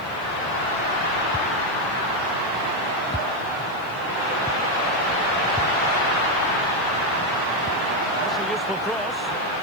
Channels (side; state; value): right; noise; hiss, 26 dB below the sound